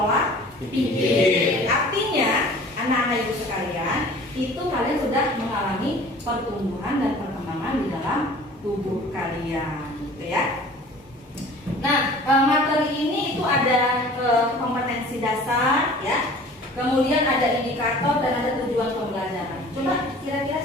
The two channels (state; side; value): normal; both; correlation 0.46